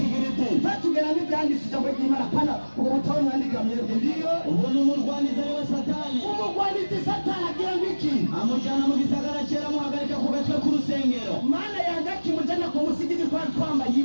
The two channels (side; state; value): both; inverted; correlation -1.00